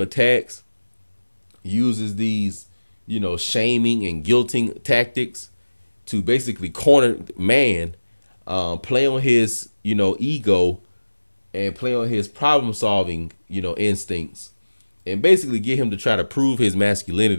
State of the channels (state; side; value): inverted; both; correlation -1.00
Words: attacks, uses these, you know, shaming and guilting tactics to basically corner man, play on his, you know, ego, and play on his problem solving, you know, instincts, and basically get him to try to prove his